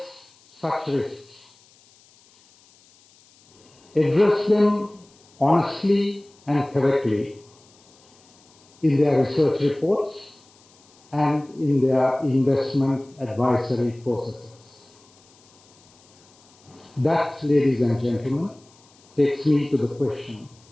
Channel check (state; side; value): noise; left; hiss, 29 dB below the sound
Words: such risks. Address them honestly and correctly in their research reports and in their investment advisory processes. That, ladies and gentlemen, takes me to the question,